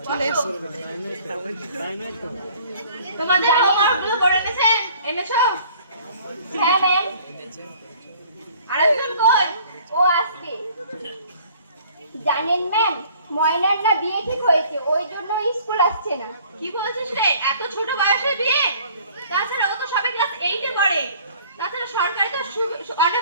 তোমাদের হোমওয়ার্কগুলো করে এনেছো? হ্যাঁ ম্যাম। আরেকজন কই? ও আসছে। জানেন ম্যাম, ময়নার না বিয়ে ঠিক হয়েছে, ওই জন্য স্কুল আসছে না। কি বলছিস রে, এত ছোট বয়সে বিয়ে? তাছাড়া ও তো সবে ক্লাস 8 এ পড়ে। তাছাড়া সরকার তো অনেক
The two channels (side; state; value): both; inverted; correlation -0.54